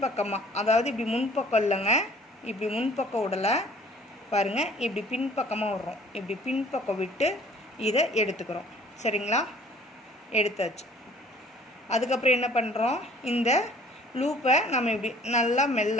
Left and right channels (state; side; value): normal; both; correlation 0.54